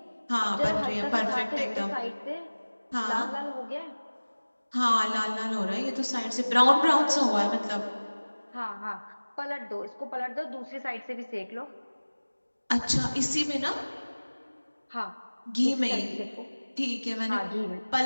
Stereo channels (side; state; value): both; inverted; correlation -1.00